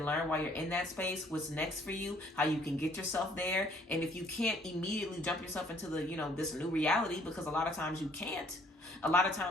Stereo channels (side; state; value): both; normal; correlation 0.61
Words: learn while you're in that space, what's next for you, how you can get yourself there. And if you can't immediately jump yourself into the, you know, this new reality, because a lot of times you can't. A lot of